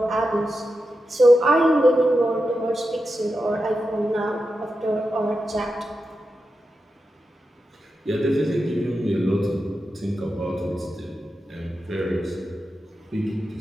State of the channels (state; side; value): normal; both; correlation 0.90